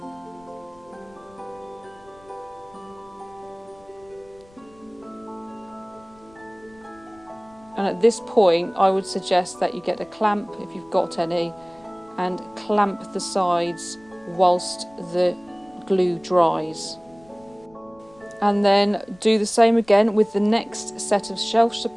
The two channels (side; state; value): left; noise; rumble, 28 dB below the sound